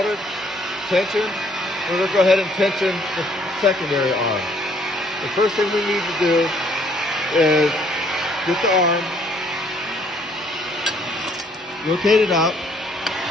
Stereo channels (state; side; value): normal; both; correlation 0.64